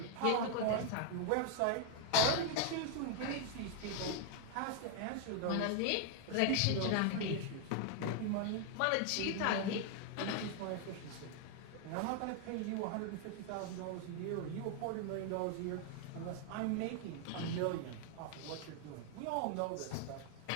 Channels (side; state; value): both; different; correlation 0.00